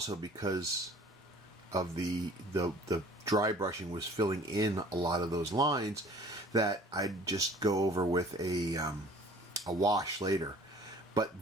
because of the dry brushing was filling in a lot of those lines, that I'd just go over with a wash later.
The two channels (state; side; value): normal; both; correlation 0.50